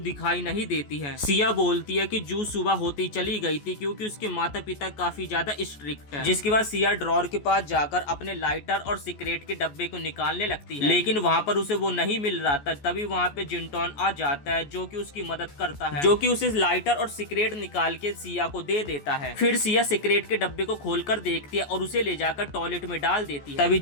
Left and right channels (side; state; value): right; late; 14 ms